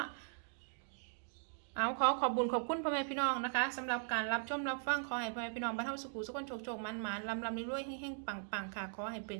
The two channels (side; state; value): left; silent; digital silence